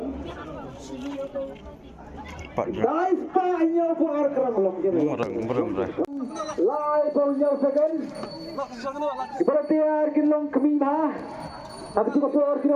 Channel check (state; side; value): identical; both; correlation 1.00